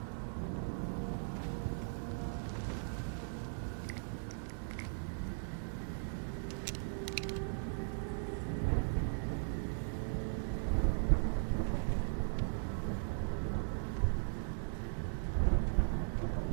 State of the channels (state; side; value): silent; left; digital silence